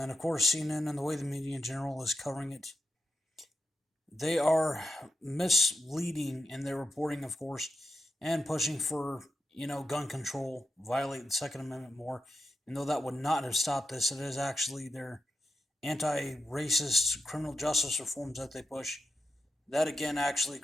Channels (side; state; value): both; normal; correlation 0.88